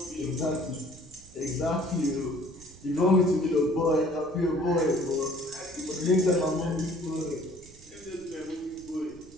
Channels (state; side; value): noise; right; rumble, 22 dB below the sound